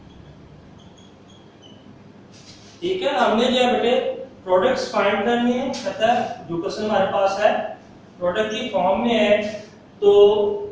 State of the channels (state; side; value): identical; both; correlation 1.00